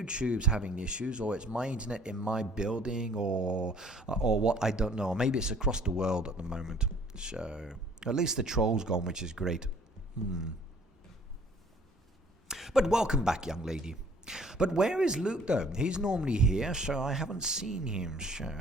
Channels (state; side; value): normal; both; correlation 0.55